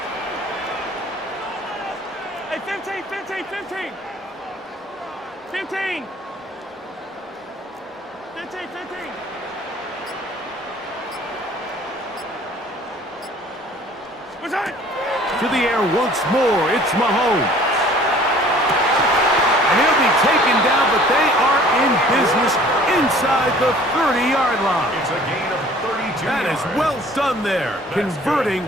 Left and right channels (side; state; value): both; normal; correlation 0.52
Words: Hey, 15. 15. What's that? To the air once more, it's Mahomes. And he'll be taken down, but they are in business inside the 30-yard line. It's a gain of 32 That yards. is well done there, converting